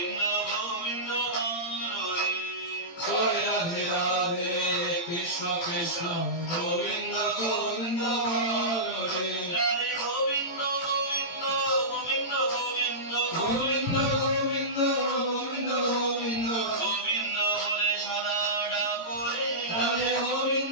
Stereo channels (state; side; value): late; right; 18 ms